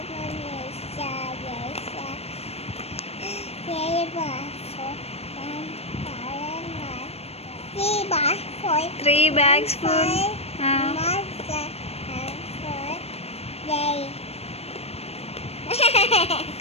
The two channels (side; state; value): right; late; 0.30 ms